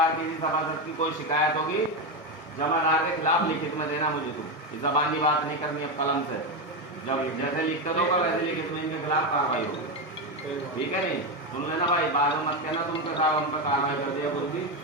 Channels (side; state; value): both; normal; correlation 0.12